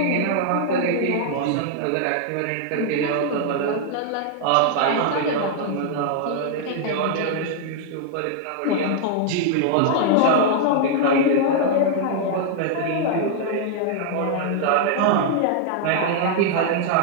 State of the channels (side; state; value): both; different; correlation 0.00